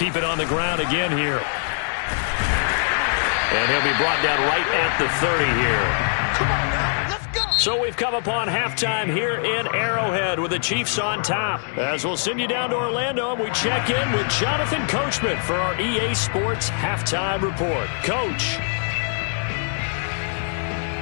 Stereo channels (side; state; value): right; silent; 64 dB below the other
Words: it on the ground again here. And he'll be brought down right at the 30 here. Come on now, let's go. So we've come upon halftime here in Arrowhead with the Chiefs on top. As we'll send you down to Orlando and we check in with Jonathan Coachman for our EA Sports Halftime Report. Coach.